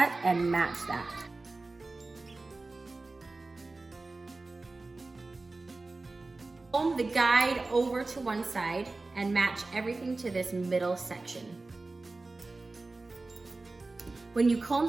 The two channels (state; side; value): quieter; left; 3.4 dB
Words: and match that. Comb the guide over to one side and match everything to this middle section. When you comb